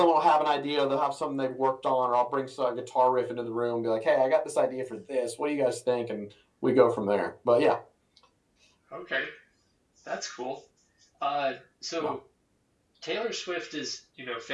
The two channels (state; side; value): identical; both; correlation 1.00